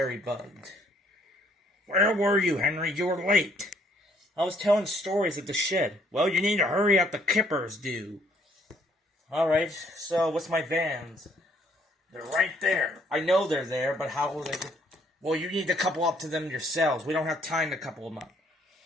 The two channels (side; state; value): both; normal; correlation 0.66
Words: bugged. Where were you, Henry? You were late. I was telling stories at the shed. Well, you need to hurry up, the kippers do. Alright, so what's my vans? They're right there. I know they're there, but how will they... Well, you need to couple up to them yourselves. We don't have time to couple them up.